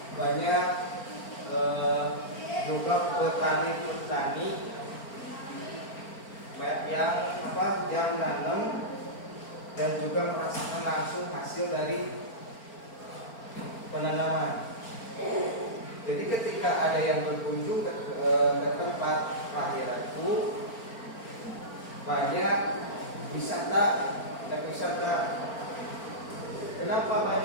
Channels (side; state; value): right; late; 4.4 ms